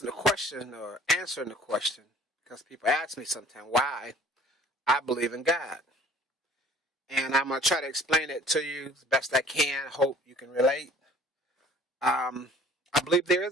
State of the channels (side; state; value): both; normal; correlation 0.52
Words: the question or answering the question because people ask me sometimes why I believe in God, and I'm gonna try to explain it to you as best I can. Hope you can relate. I believe there